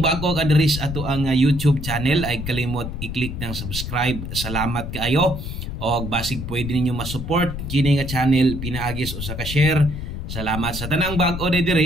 ka diri sa ato ang YouTube channel ay kalimot i-click ng subscribe. Salamat kaayo. Og basig pwede ninyo ma-support kini nga channel pinaagis usa ka share. Salamat sa tanang bag-o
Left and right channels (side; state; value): left; noise; rumble, 6 dB below the sound